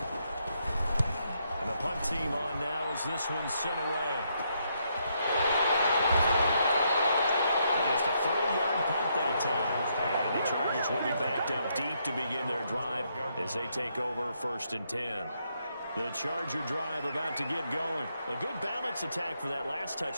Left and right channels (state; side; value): inverted; both; correlation -0.76